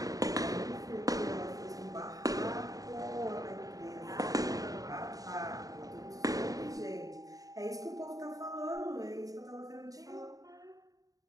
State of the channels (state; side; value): late; left; 0.17 ms